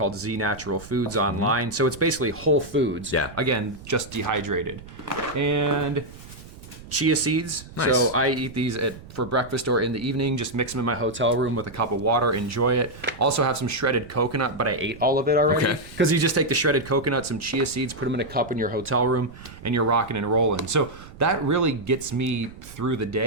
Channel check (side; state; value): right; noise; rumble, 17 dB below the sound